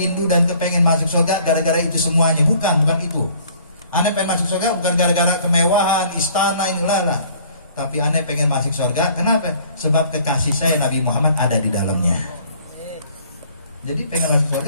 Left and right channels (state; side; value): inverted; both; correlation -0.56